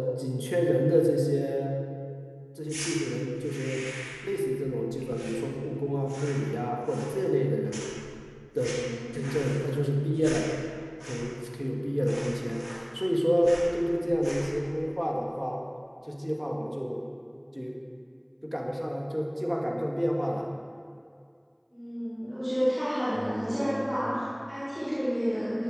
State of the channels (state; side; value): identical; both; correlation 1.00